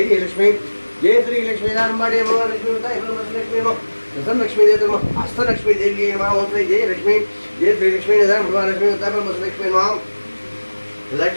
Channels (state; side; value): inverted; both; correlation -1.00